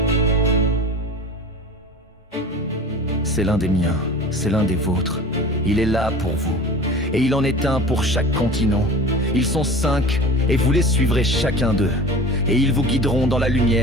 c'est l'un des miens, c'est l'un des vôtres. Il est là pour vous, et il en est un pour chaque continent. Ils sont 5, et vous les suivrez chacun d'eux. Et ils vous guideront dans la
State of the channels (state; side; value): normal; both; correlation 0.37